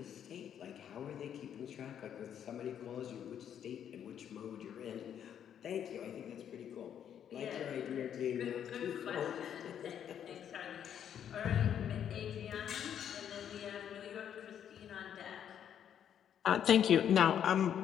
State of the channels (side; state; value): right; quieter; 9.2 dB